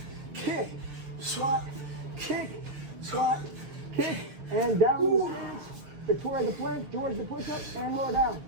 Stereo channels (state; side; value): late; left; 6.7 ms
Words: kick, squat, kick, squat, kick, and down the stance. Victoria the plank, George the push-up, and lower down.